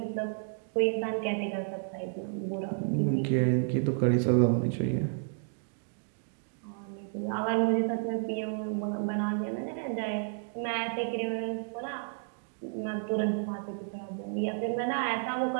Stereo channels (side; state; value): left; silent; 57 dB below the other